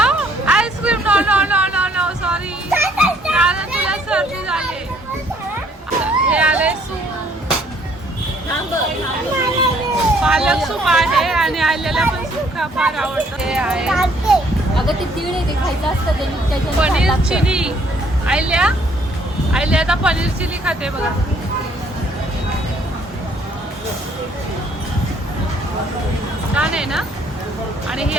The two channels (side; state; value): both; normal; correlation 0.64